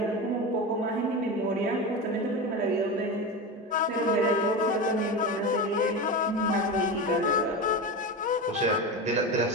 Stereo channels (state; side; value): normal; both; correlation 0.22